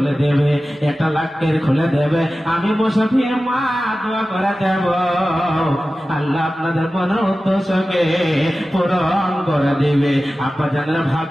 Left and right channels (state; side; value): normal; both; correlation 0.95